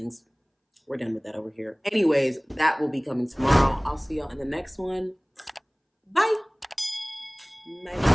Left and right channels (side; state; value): both; identical; correlation 1.00